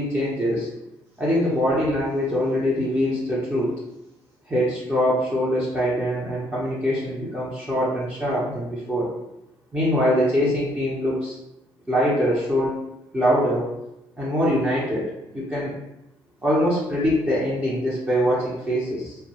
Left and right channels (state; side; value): normal; both; correlation 0.69